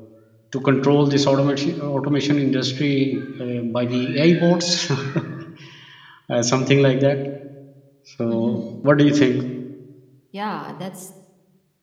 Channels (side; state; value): both; identical; correlation 1.00